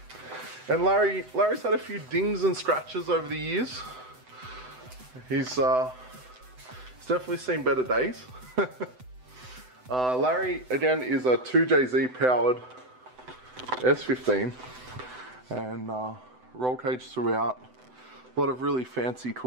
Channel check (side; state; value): left; late; 7.9 ms